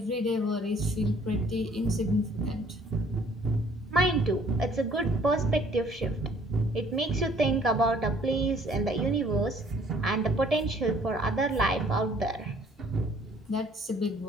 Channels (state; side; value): normal; both; correlation 0.59